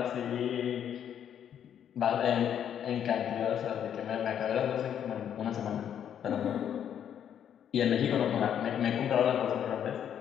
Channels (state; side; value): quieter; right; 9.2 dB